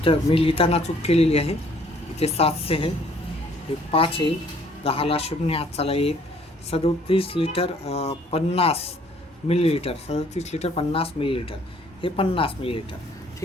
मी लिहिताना चूक केलेली आहे. इथे 700 आहे, हे 5 येईल. 10ला 0 हात चाला 1. 37 लिटर 50 मिलीलीटर. 37 litre 50 millilitre. हे 50 मिलीलीटर.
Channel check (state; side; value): normal; both; correlation 0.61